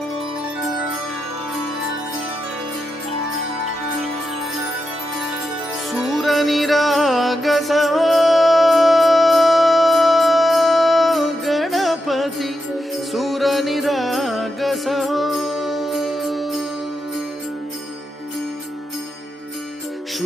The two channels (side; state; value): both; normal; correlation 0.87